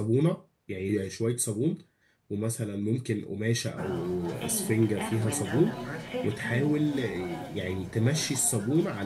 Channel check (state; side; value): identical; both; correlation 1.00